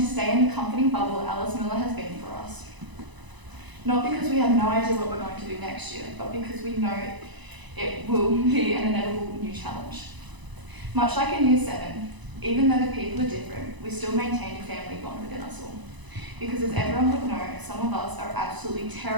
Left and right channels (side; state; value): left; late; 1.0 ms